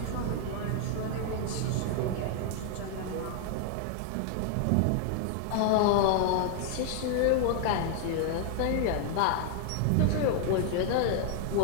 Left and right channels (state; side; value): different; both; correlation 0.00